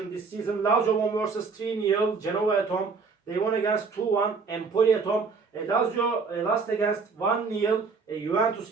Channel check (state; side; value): quieter; left; 4.8 dB